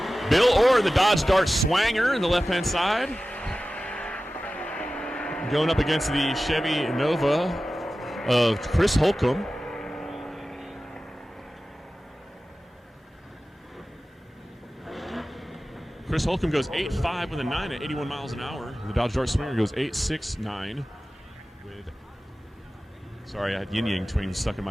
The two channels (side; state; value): both; normal; correlation 0.95